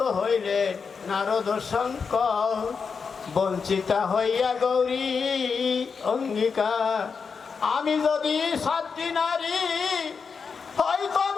হইলে নারদ শঙ্কর বঞ্চিতা হইয়া গৌরী অঙ্গীকার আমি যদি সাতটি নারী হই তব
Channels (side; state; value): right; quieter; 5.6 dB